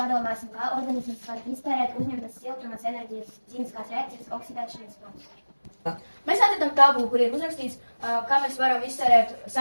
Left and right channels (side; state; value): both; inverted; correlation -1.00